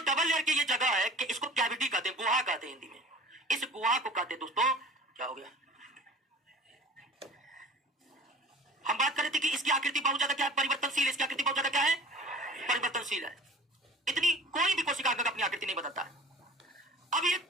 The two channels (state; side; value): normal; both; correlation 0.43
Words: डबल लेयर की ये जगह है, कि इसको कैविटी कहते हैं, गुहा कहते हैं हिंदी में। इस गुहा को कहते हैं दोस्तों, क्या हो गया, हम बात कर रहे थे कि इसकी आकृति बहुत ज्यादा क्या है? परिवर्तनशील। इसकी आकृति बहुत ज्यादा क्या है? परिवर्तनशील है। इतनी कोई भी कोशिका अंगक अपनी आकृति नहीं बदलता है। अब ये